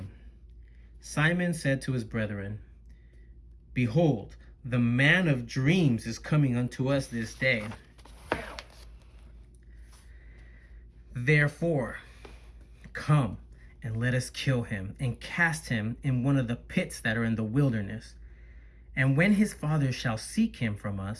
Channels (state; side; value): identical; both; correlation 1.00